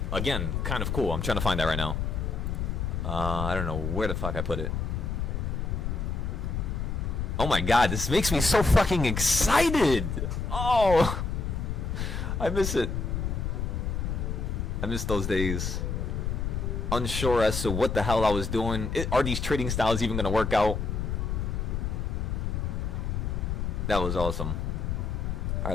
again, kind of cool. I'm trying to find that right now. I don't know where the fuck I put it. Oh my god, this makes me so fucking excited! Oh! I miss it. I miss those days. Unsure as to what the hell I was doing. Are these trading styles even gonna work out? That was awesome.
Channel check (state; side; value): noise; left; rumble, 2 dB below the sound